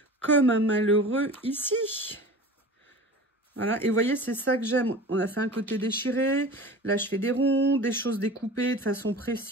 comme un malheureux ici. Voilà, et vous voyez, c'est ça que j'aime. On a fait un côté déchiré. Là, je fais des ronds, des choses découpées de façon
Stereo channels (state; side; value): normal; both; correlation 0.37